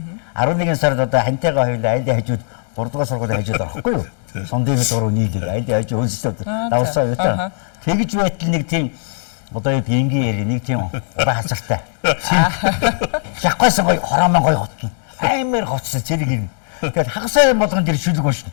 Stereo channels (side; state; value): right; silent; digital silence